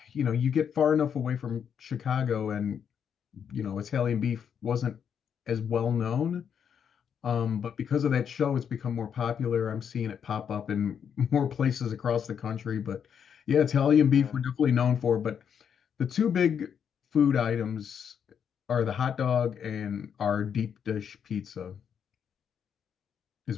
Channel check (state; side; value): quieter; right; 7.8 dB